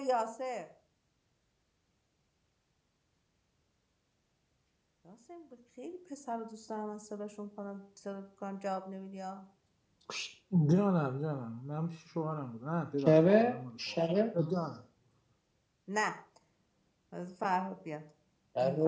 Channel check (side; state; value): both; identical; correlation 1.00